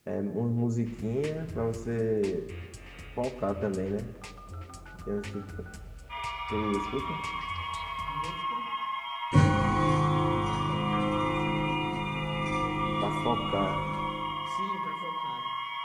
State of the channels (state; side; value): identical; both; correlation 1.00